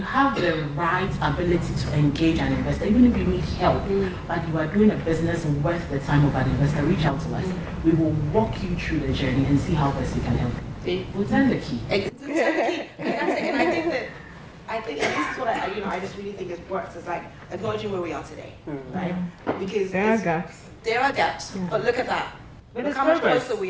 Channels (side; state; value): both; identical; correlation 1.00